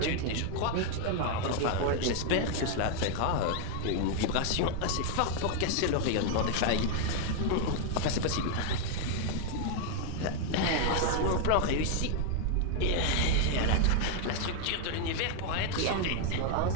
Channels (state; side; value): different; both; correlation 0.00